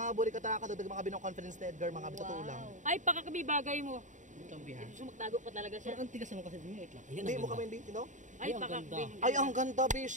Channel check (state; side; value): late; left; 0.36 ms